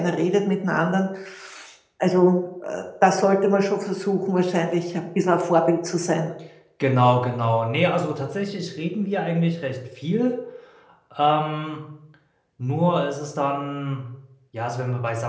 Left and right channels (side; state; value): both; identical; correlation 1.00